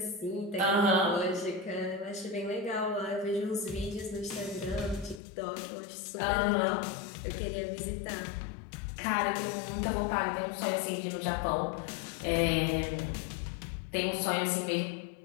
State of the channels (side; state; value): right; drops out; at 5.2 s